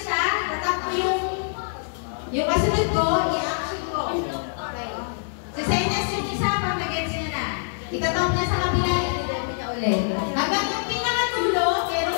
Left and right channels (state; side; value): silent; right; 62 dB below the other